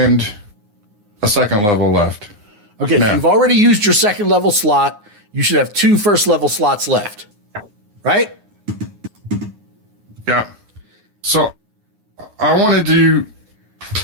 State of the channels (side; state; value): left; late; 9.6 ms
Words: a second level left. Okay, so No. you've already used your second level slot. You should have 2 first level slots left, right? Yeah. So I want to do